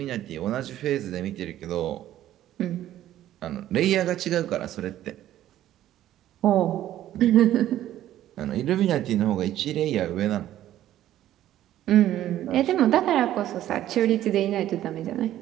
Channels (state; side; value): quieter; left; 12.8 dB